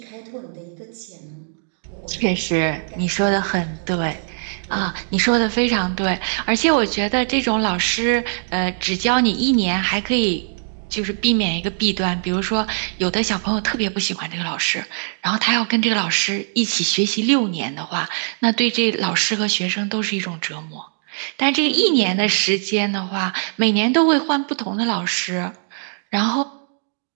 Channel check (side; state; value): left; silent; digital silence